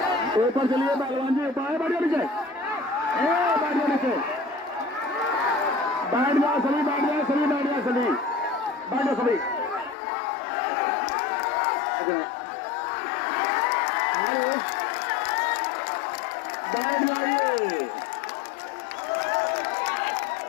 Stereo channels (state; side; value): drops out; right; at 10.0 s